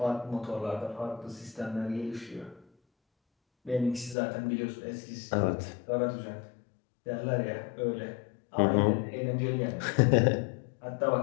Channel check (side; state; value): right; drops out; at 4.2 s